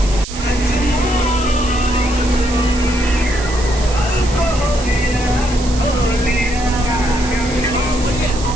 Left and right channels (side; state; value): right; noise; hiss, 12 dB below the sound